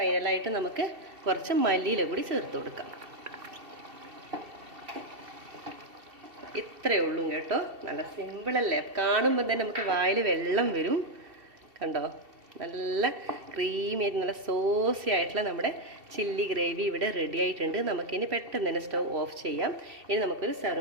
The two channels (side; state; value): left; late; 2.7 ms